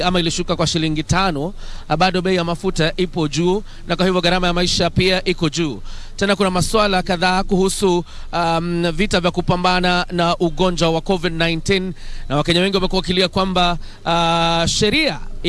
ama ilishuka kwa shilingi 5, bado bei ya mafuta ipo juu, na kwa hivyo gharama ya maisha pia iko juu. Tena kuna masuala kadhaa kuhusu vita vya kupambana na ugonjwa wa COVID-19, na Wakenya wengi wamekuwa wakilia kwamba sheria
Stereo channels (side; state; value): both; identical; correlation 1.00